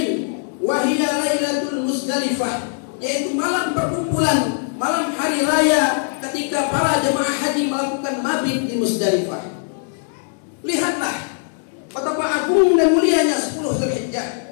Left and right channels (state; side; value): silent; right; 65 dB below the other